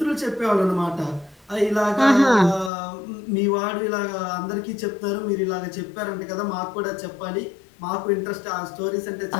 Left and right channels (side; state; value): right; drops out; at 2.7 s